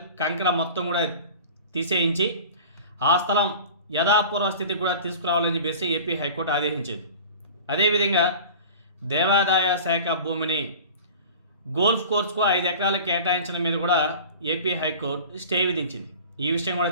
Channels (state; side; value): inverted; both; correlation -0.39